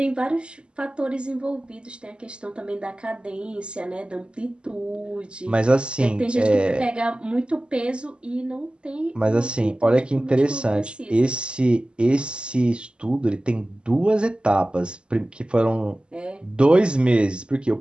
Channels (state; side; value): late; left; 0.051 ms